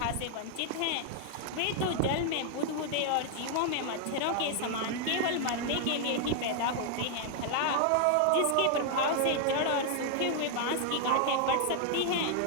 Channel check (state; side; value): different; both; correlation 0.00